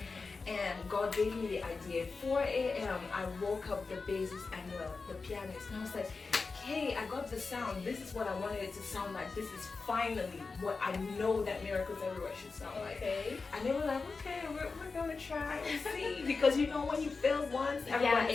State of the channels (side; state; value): right; quieter; 4.3 dB